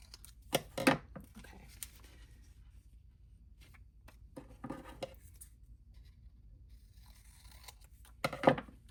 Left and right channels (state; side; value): identical; both; correlation 1.00